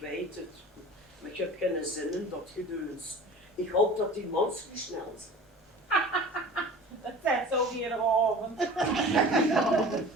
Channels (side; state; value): both; normal; correlation 0.40